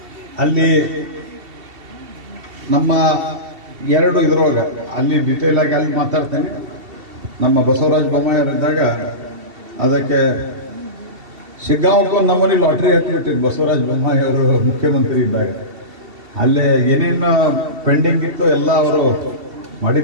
ಅಲ್ಲಿ ನಮ್ಮ 2 ಇದ್ರೊಳಗೆ ಅಲ್ಲಿ ಡಿಟೇಲ್ ಆಗಿ ಅಲ್ಲಿ ಮಾತಾಡ್ತೇನೆ. ನಮ್ಮ ಬಸವರಾಜ ಬೊಮ್ಮಾಯಿಯವರಿದ್ದಾಗ ಅದಕ್ಕೆ ಶಿಗ್ಗಾಂವಕ್ಕೆ ಒಂದು ನಮೂನಿ ಲಾಟ್ರಿ ಹತ್ತಿಬಿಟ್ಟಿದ್ದು ಬಸವರಾಜ ಬೊಮ್ಮಾಯಿ ಅವರು ಮುಖ್ಯಮಂತ್ರಿ ಇದ್ದಾಗ. ಅಲ್ಲೇ ಏನೇನು ಪೆಂಡಿಂಗ್ ಇತ್ತು ಎಲ್ಲ ಅವರು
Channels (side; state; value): left; late; 2.7 ms